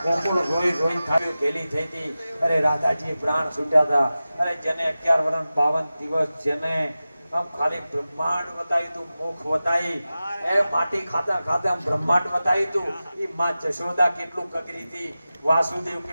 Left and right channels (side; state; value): both; inverted; correlation -0.95